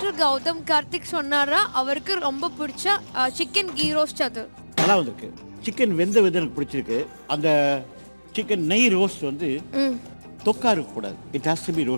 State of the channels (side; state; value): both; inverted; correlation -1.00